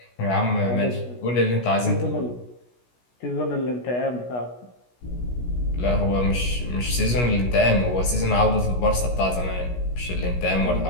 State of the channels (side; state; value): right; late; 16 ms